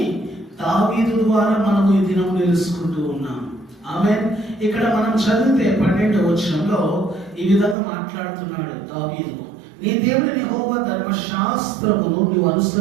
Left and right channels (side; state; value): left; drops out; at 7.8 s